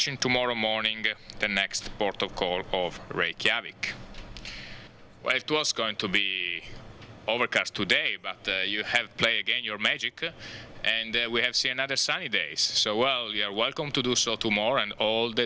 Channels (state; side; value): identical; both; correlation 1.00